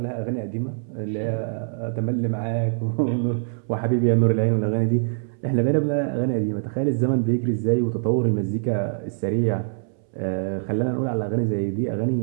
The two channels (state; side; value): silent; left; 63 dB below the other